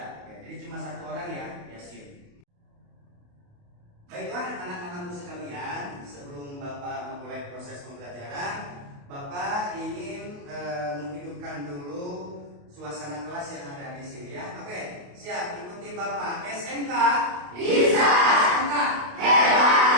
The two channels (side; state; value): left; late; 28 ms